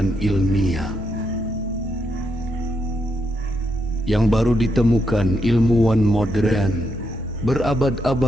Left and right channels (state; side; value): normal; both; correlation 0.80